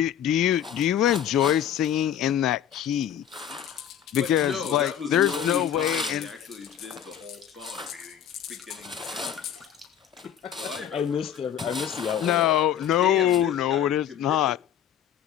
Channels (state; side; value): quieter; right; 9.8 dB